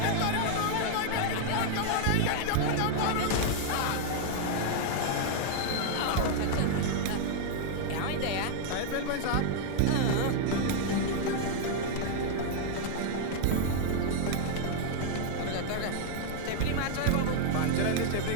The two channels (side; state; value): both; different; correlation -0.01